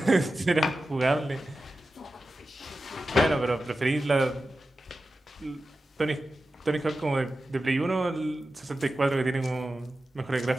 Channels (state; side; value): normal; both; correlation 0.93